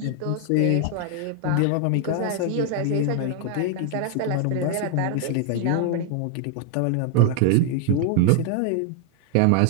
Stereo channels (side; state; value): both; different; correlation 0.00